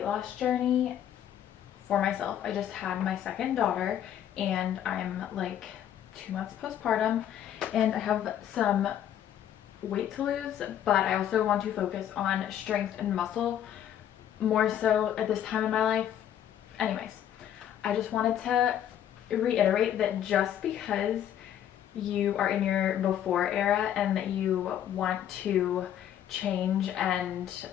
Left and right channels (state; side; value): quieter; right; 10.4 dB